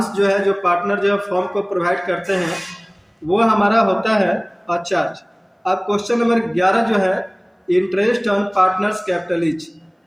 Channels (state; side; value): identical; both; correlation 1.00